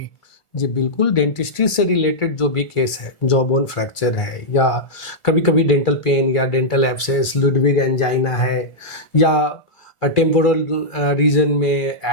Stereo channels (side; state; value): right; late; 1.4 ms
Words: जी बिल्कुल, डेंटिस्ट्री से रिलेटेड जो भी केस है, जॉ बोन फ्रैक्चर है या कभी कभी डेंटल पेन या डेंटल एब्सेस, लुडविग एंजाइना है या टेम्पोरल रीजन में